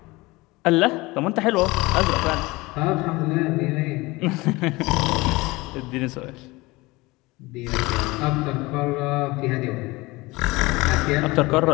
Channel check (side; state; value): right; quieter; 22.1 dB